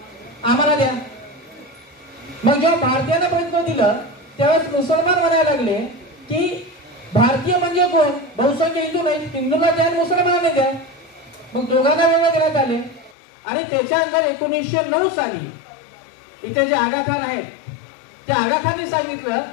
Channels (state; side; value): drops out; right; at 13.2 s